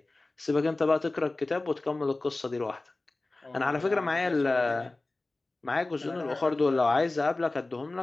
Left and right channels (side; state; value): right; quieter; 3.1 dB